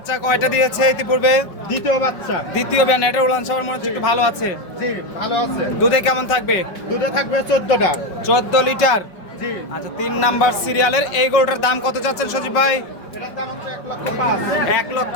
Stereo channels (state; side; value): late; right; 5.3 ms